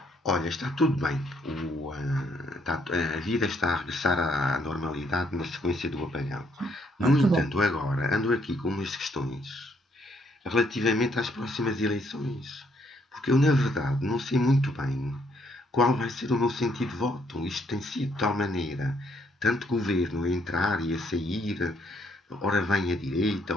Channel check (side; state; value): both; normal; correlation 0.70